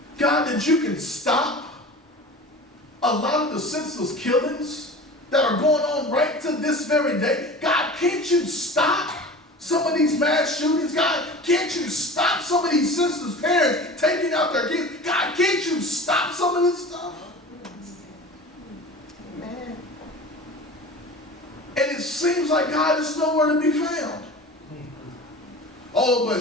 God, that you can stop a lot of the senseless killings that are going on right to this very day? God, can't you stop some of these mass shootings? God, can't you stop some of these senseless parents taking out their kids? God, can't you stop some of this stuff? And it seems like God is nowhere to be found. Oh, but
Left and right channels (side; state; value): both; normal; correlation 0.37